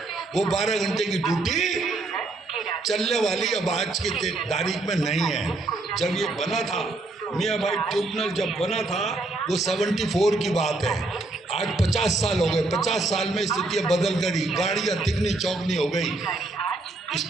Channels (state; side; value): quieter; left; 3.1 dB